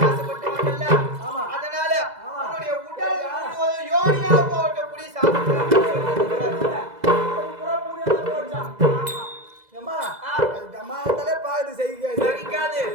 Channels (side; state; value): left; late; 2.0 ms